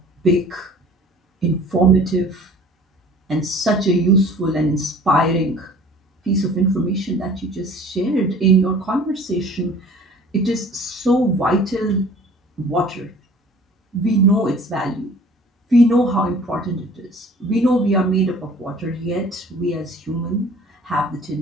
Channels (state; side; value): normal; both; correlation 0.48